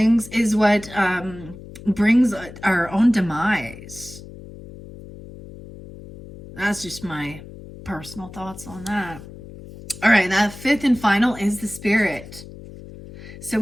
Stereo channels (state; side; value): noise; left; hum, 16 dB below the sound